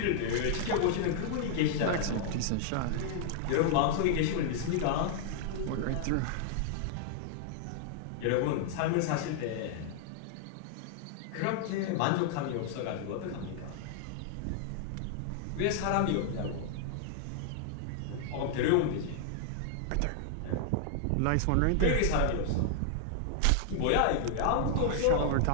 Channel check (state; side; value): different; both; correlation -0.01